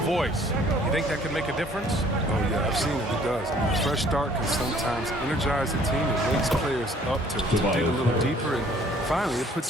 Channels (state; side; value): normal; both; correlation 0.57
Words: You think that could make a difference? Oh, yeah, I've seen it. It does. A fresh start can sometimes energize a team. It wakes players up to dig a little deeper. And finally, it